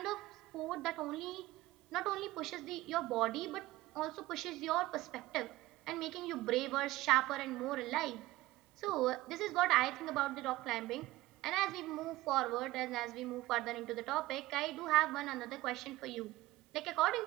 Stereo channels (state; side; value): quieter; left; 17.8 dB